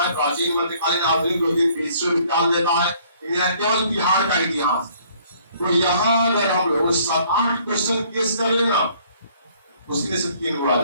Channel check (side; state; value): both; inverted; correlation -0.60